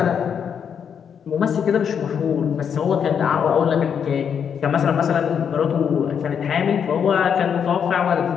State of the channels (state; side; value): quieter; right; 7.6 dB